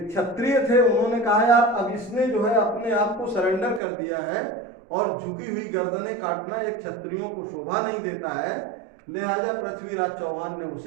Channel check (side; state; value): left; drops out; at 3.8 s